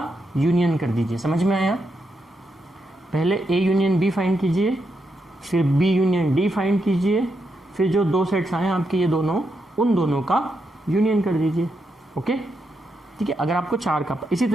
यूनियन कर दीजिए। समझ में आया? पहले ए यूनियन बी फाइंड कीजिए, फिर बी यूनियन डी फाइंड कीजिए, फिर जो 2 सेट्स आए आपके ये दोनों, उन दोनों का यूनियन कर दीजिए। ओके, ठीक है। अगर आपको 4 का, इसी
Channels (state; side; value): normal; both; correlation 0.83